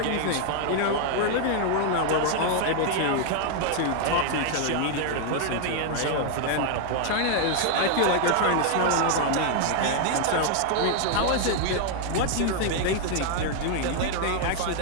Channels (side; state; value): both; different; correlation 0.00